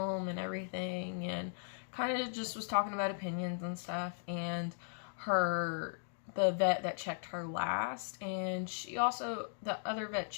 and everything, and kind of just was talking about opinions and stuff. And the vet that checked her last, and the other vet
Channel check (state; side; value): silent; right; digital silence